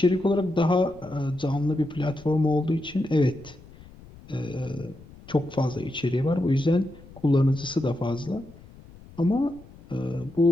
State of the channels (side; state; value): left; noise; rumble, 21 dB below the sound